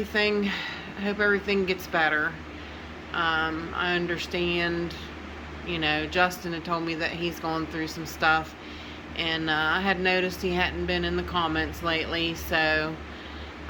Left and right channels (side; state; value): both; identical; correlation 1.00